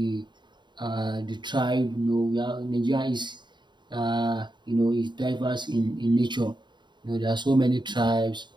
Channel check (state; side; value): late; left; 0.22 ms